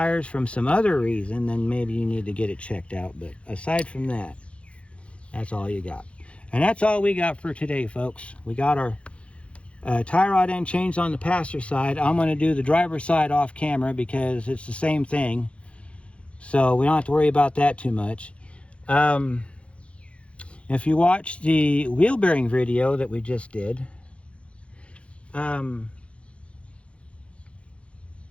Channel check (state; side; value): late; right; 0.061 ms